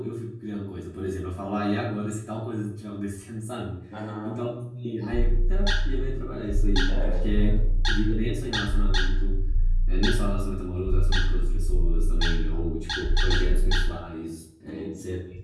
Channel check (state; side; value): identical; both; correlation 1.00